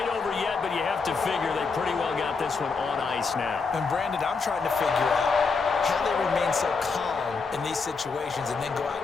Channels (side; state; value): right; quieter; 4.7 dB